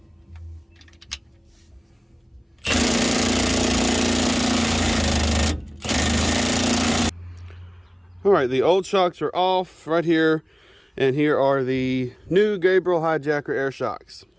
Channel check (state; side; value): identical; both; correlation 1.00